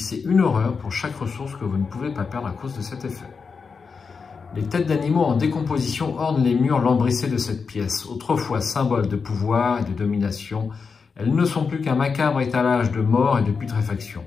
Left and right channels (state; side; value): quieter; right; 5.3 dB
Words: une horreur pour chaque ressource que vous ne pouvez pas perdre à cause de cet effet. Les têtes d'animaux en décomposition ornent les murs lambrissés de cette pièce. Autrefois symbole de pouvoir et de domination, elles ne sont plus qu'un macabre étalage de mort et de putréfaction.